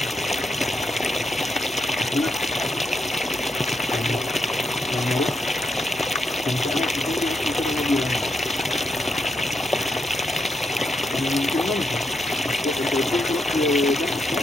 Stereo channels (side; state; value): both; normal; correlation 0.82